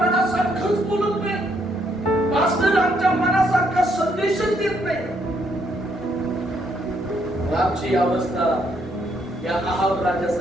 बोलत नाही. पास्टर आमच्या मनासारखा संदेशच देत नाही. आमची अवस्था या आहाब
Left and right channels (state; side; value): normal; both; correlation 0.72